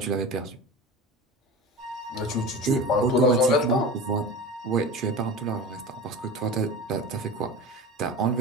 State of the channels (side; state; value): both; normal; correlation 0.31